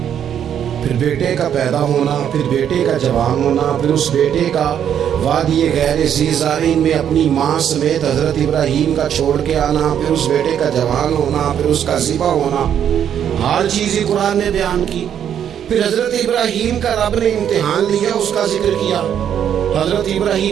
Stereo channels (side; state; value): left; quieter; 9.2 dB